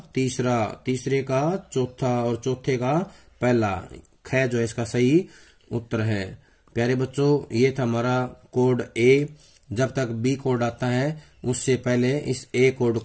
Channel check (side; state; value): both; identical; correlation 1.00